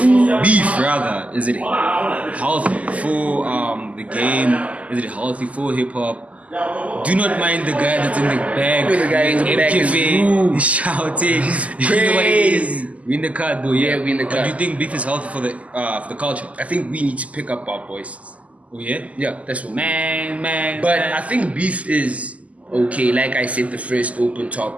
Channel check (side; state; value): left; late; 0.069 ms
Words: beef rather, is it healthy for the game? Is it healthy for hip hop? do not mind the guy that's in the back. The guy in the back is rude. He's shouting. You know what it is? We in the car though, yeah. We in the car. But do you think beef is healthy for the culture? I think we need to pick up our voices. Oh yeah? Yeah, that's what. Man. But I think beef is okay. Like I said, the first open